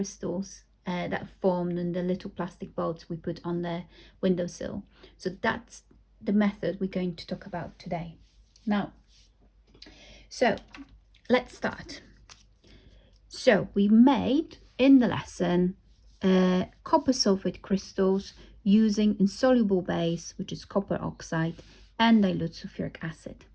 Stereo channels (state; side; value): identical; both; correlation 1.00